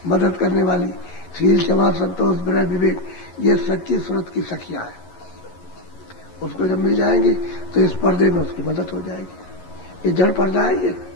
मदद करने वाली। शील, क्षमा, संतोष, विनय, विवेक ये सच्ची सूरत की सखियां हैं। उसको जब मिल जाएंगी तो इस पर्दे में उसकी मदद हो जाएगी। ये जड़ पर्दा है,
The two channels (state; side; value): late; right; 11 ms